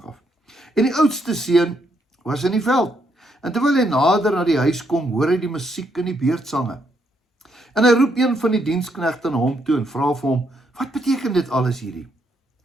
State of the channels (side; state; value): both; normal; correlation 0.75